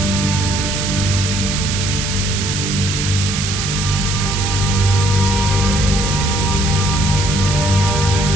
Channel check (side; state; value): right; noise; hiss, 3 dB below the sound